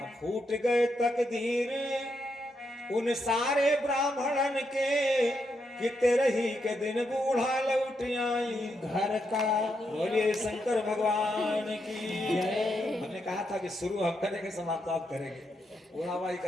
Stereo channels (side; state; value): both; normal; correlation 0.81